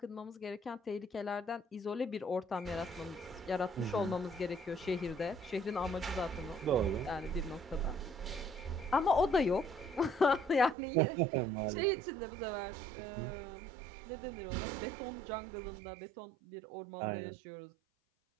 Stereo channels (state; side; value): drops out; left; at 10.8 s